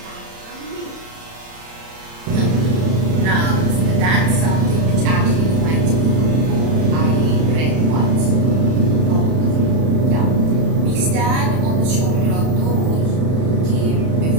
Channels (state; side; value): late; left; 31 ms